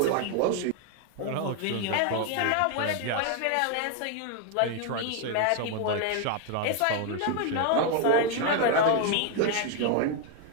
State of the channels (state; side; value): different; both; correlation 0.01